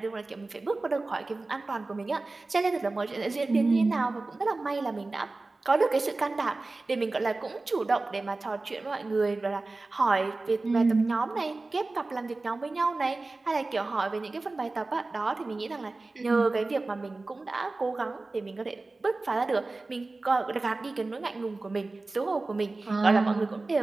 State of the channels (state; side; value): quieter; left; 3.3 dB